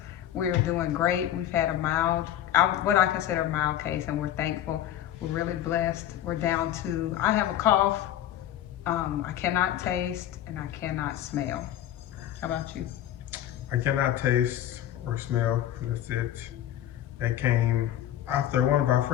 We're doing great. We've had a mild, what I consider a mild case, and we're thankful. We're really blessed. We're down to, I have a cough. I cannot taste and I cannot smell. How about you? I cannot taste or smell. That's it. That came after one of our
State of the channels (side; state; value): right; quieter; 11.8 dB